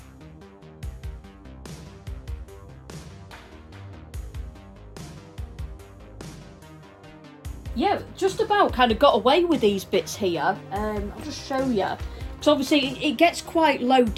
Yeah, just about kind of got away with these bits here. I'll just show you, because obviously it gets quite low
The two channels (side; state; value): both; identical; correlation 1.00